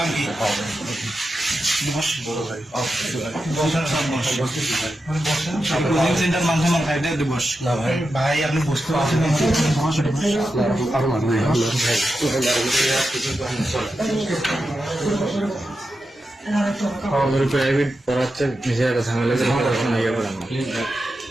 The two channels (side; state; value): both; normal; correlation 0.89